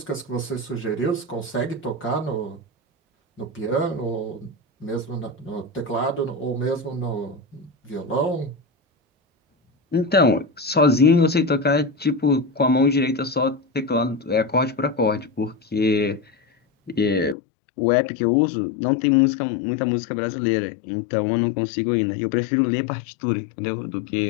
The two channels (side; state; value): right; drops out; at 17.4 s